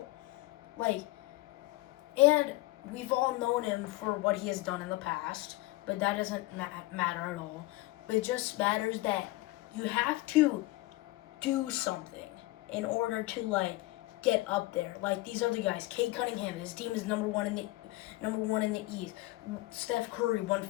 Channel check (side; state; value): right; quieter; 19.6 dB